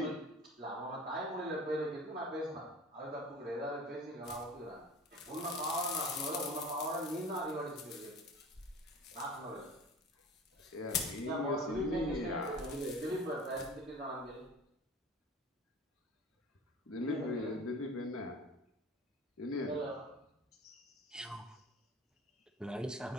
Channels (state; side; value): normal; both; correlation 0.39